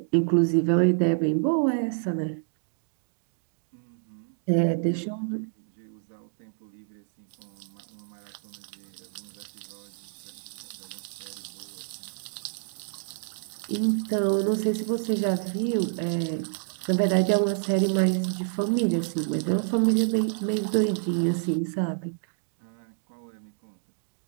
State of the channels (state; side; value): silent; left; digital silence